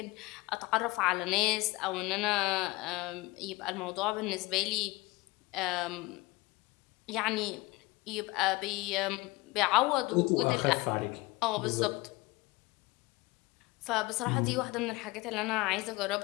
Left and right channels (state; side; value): quieter; right; 22.5 dB